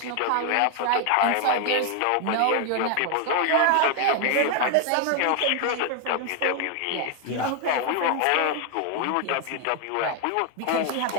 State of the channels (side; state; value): both; different; correlation 0.00